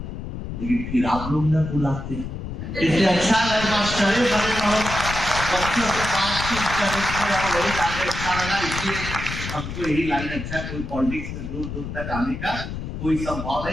लेकिन फिर आप लोग न बुलाते, इसलिए अच्छा है मास्टर बच्चों से बातचीत करने वही काफी अच्छा लगा। इसलिए हमको यही लाइन अच्छा, कोई पॉलिटिक्स में दूर दूर तक आने का कोई संभव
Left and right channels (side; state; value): left; noise; rumble, 7 dB below the sound